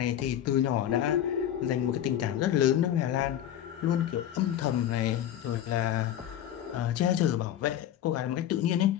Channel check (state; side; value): quieter; right; 11.1 dB